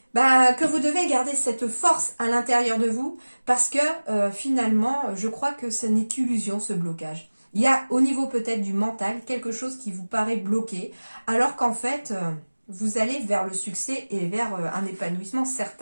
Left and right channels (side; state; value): both; inverted; correlation -1.00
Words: que vous devez garder cette force à l'intérieur de vous parce que finalement, je crois que ce n'est qu'illusion ce blocage. Il y a au niveau peut-être du mental quelque chose qui vous paraît bloqué alors qu'en fait, vous allez vers le succès et vers un épanouissement